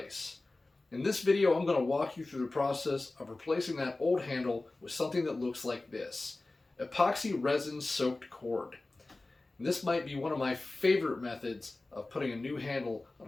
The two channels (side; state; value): right; quieter; 3.1 dB